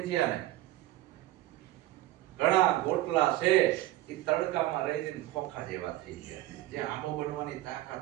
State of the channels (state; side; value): quieter; left; 16.0 dB